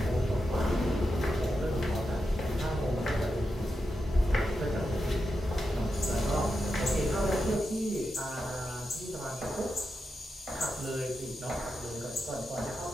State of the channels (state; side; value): normal; both; correlation 0.88